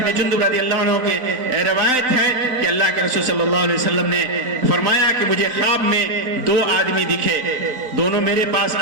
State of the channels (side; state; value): left; late; 3.9 ms